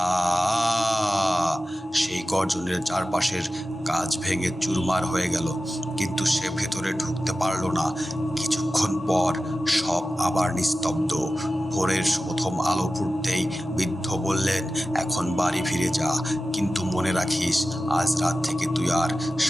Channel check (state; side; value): normal; both; correlation 0.94